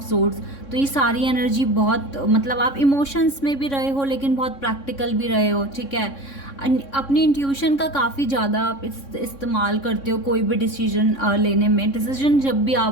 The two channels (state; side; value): late; right; 3.6 ms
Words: swords. तो ये सारी एनर्जी बहुत, मतलब आप इमोशंस में भी रहे हो लेकिन बहुत प्रैक्टिकल भी रहे हो, ठीक है। अपनी इंट्यूशन का काफ़ी ज़्यादा आप इस्तेमाल करते हो कोई भी डिसीजन लेने में। डिसीजन